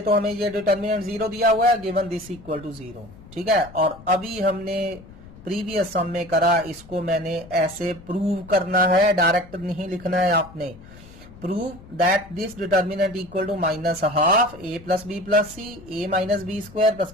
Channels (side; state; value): left; noise; rumble, 20 dB below the sound